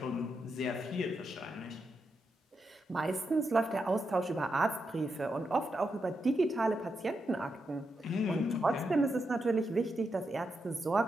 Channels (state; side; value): normal; both; correlation 0.85